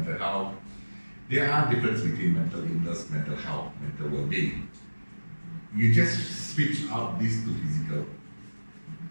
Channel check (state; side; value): inverted; both; correlation -1.00